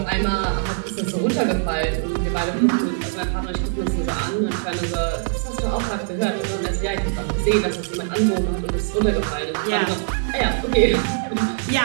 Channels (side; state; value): left; silent; digital silence